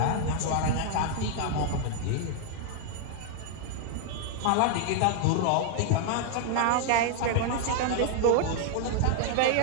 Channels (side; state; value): both; different; correlation 0.00